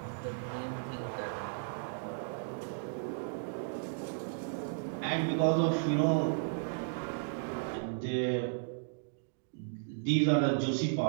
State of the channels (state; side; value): silent; left; digital silence